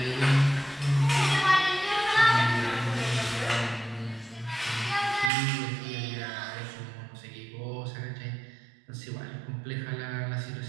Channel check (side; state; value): left; drops out; at 5.3 s